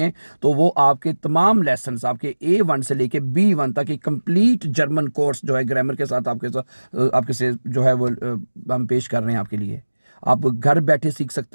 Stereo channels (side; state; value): both; inverted; correlation -1.00